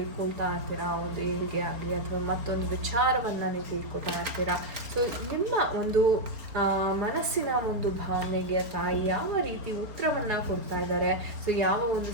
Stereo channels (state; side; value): late; left; 4.3 ms